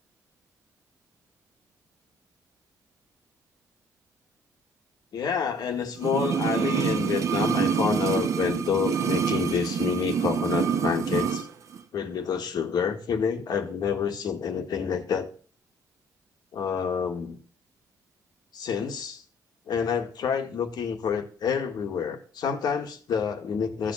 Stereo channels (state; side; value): normal; both; correlation 0.55